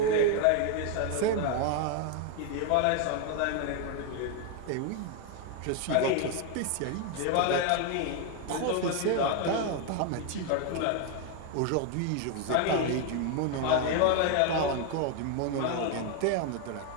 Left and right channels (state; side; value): different; both; correlation 0.01